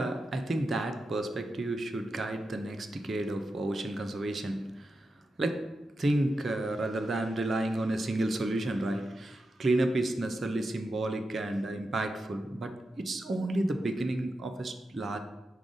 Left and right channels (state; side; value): normal; both; correlation 0.89